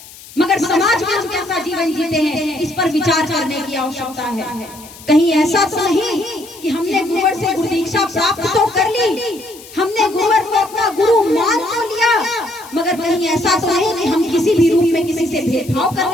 मगर समाज में हम कैसा जीवन जीते हैं इस पर विचार करने की आवश्यकता है। कहीं ऐसा तो नहीं कि हमने गुरुवर से गुरु दीक्षा प्राप्त तो कर ली, हमने गुरुवर को अपना गुरु मान तो लिया, मगर कहीं ऐसा तो नहीं कि हम किसी भी रूप में किसी से भेदभाव कर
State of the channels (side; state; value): left; noise; hiss, 19 dB below the sound